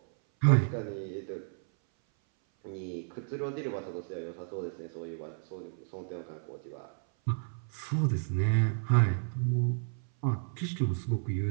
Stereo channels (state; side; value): silent; left; 56 dB below the other